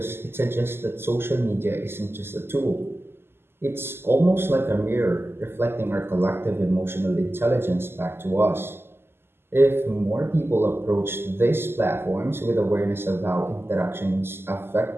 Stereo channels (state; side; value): late; left; 0.12 ms